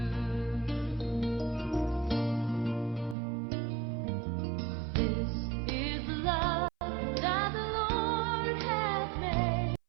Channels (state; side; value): drops out; left; at 3.2 s